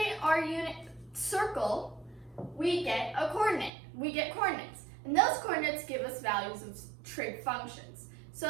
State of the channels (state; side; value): drops out; left; at 3.7 s